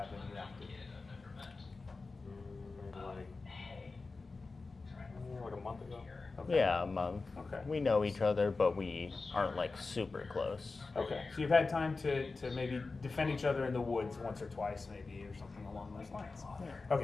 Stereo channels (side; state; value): right; quieter; 3.9 dB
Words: interacted? Like a month ago. Okay. Yeah, a month. Okay. We know each other, but we aren't like super close. Okay, so you've had time to maybe defend each other in the woods once or twice, maybe, or something along those lines.